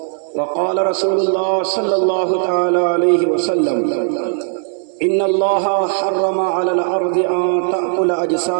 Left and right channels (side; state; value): left; silent; 59 dB below the other